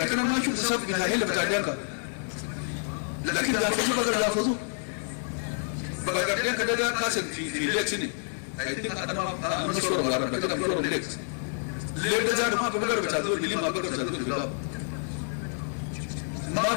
أنا ما أشوف بسبب بتاع هيلا بتاع ديانكا لكن يحفظوا بقدر يحفظوا بقدر ديانكا ده كاسد في الليك سنين أنا مشهور وارد لكن أنا مشهور الليك الليك ده جانو ما بقدر بتاع دول اللي ما بقدر بتاع دول بيقاب ما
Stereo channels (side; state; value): right; silent; 59 dB below the other